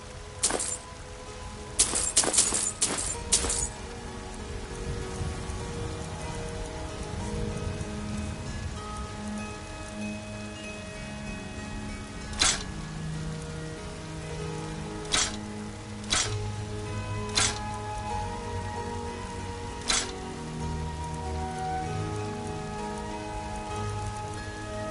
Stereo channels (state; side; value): identical; both; correlation 1.00